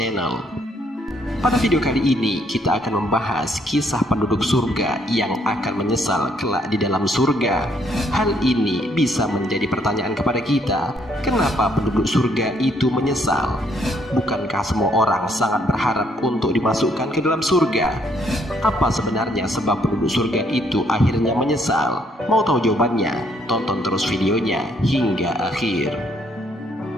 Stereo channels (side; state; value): both; normal; correlation 0.69